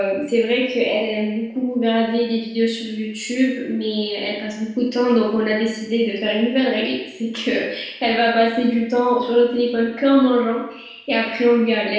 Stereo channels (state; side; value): identical; both; correlation 1.00